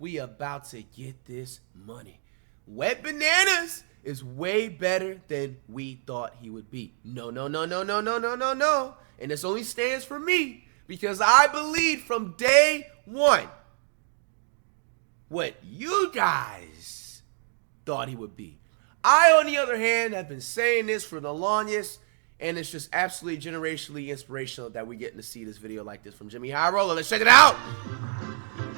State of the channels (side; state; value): left; silent; 60 dB below the other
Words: about to get this money. Wet Bananas is way better than we thought he would be. No. And this only stands for me because I believed from day one what you guys thought he would be. I, on the other hand, have been saying this for the longest, and it's just absolutely generationally inspirational that we're getting to see this video like this from Jimmy High Roller. Let's check it out.